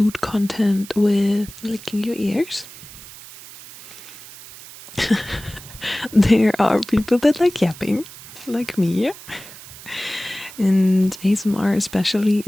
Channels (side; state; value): right; noise; hiss, 17 dB below the sound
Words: content with licking your ears. There are people that like yapping, like me. And ASMR especially